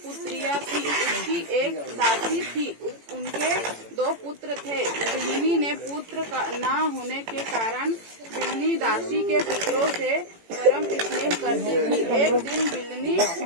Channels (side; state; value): left; late; 18 ms